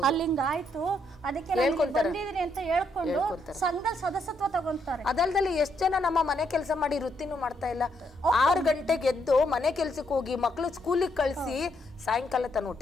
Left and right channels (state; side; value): normal; both; correlation 0.75